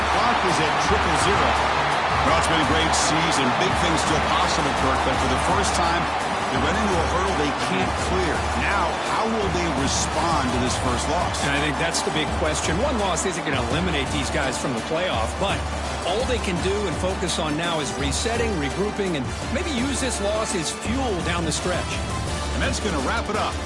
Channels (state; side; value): identical; both; correlation 1.00